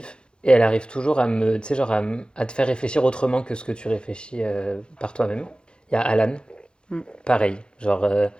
Et elle arrive toujours tu sais, genre à te faire réfléchir autrement que ce que tu réfléchis par toi-même. Il y a Alan, Mm. pareil, genre,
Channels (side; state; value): right; late; 0.051 ms